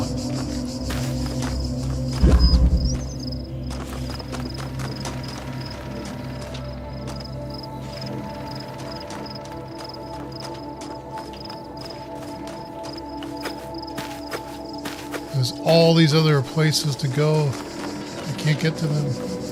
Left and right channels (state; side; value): identical; both; correlation 1.00